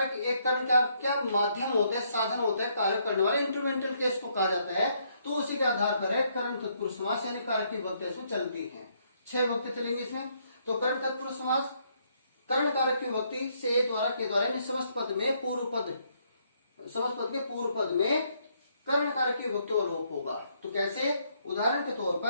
एक कर्म कारक क्या माध्यम होता है, साधन होता है, कार्य करने वाले, इंस्ट्रूमेंटल केस को कहा जाता है। तो उसी के आधार पर है कर्म तत्पुरुष समास, यानी कारक की विभक्ति इसमें चलती है। 6 विभक्ति चलेंगी इसमें। तो कर्म तत्पुरुष समास कर्म कारक की विभक्ति से द्वारा के द्वारा, यानी समस्त पद में पूर्व पद, समस्त पद के पूर्व पद में कर्ण कारक की विभक्ति का लोप होगा। तो कैसे? उदाहरण के तौर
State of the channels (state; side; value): inverted; both; correlation -0.72